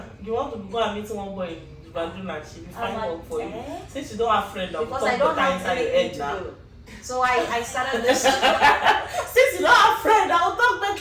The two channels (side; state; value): both; identical; correlation 1.00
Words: you want to go and meet one boy in Banduna, she'll be fine work for you. Since you don't have friends, because I don't have anything to do. So I started this. Since you don't have friends, I'll talk the